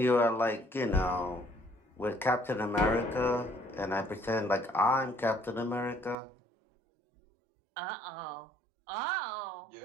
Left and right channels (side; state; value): left; drops out; at 6.2 s